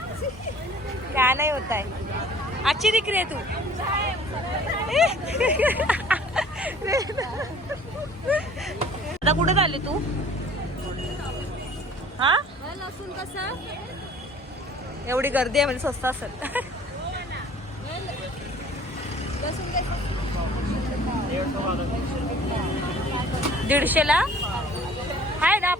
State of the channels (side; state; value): both; normal; correlation 0.50